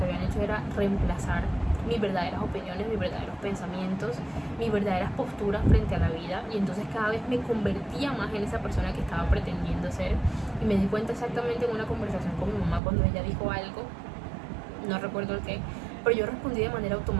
habían hecho era reemplazar mis verdaderas opiniones, mis verdaderos pensamientos, mis verdaderas posturas frente a la vida, y entonces cada vez me convertía más en esa persona que estaba pretendiendo ser. Y me di cuenta exactamente en una conversación con mi mamá, cuando ella dijo algo, no recuerdo el qué, pero yo respondí de manera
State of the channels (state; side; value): drops out; left; at 12.8 s